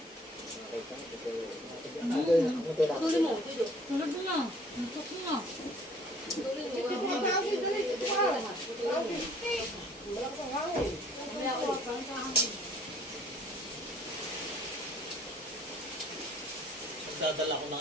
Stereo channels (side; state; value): both; normal; correlation 0.56